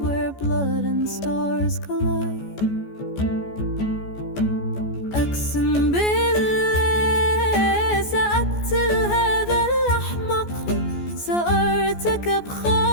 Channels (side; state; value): right; late; 14 ms